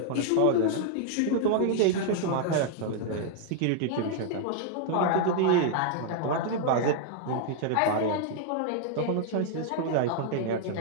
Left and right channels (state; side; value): different; both; correlation 0.00